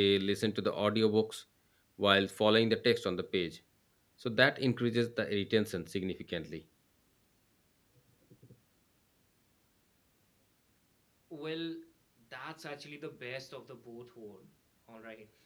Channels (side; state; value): both; identical; correlation 1.00